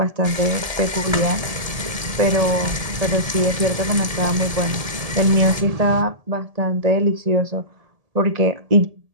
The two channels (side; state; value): left; late; 1.7 ms